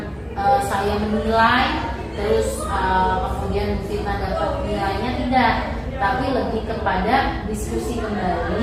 saya menilai terus kemudian Bu Fitna dapat nilainya, tidak, tapi lebih kepada diskusi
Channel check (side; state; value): both; identical; correlation 1.00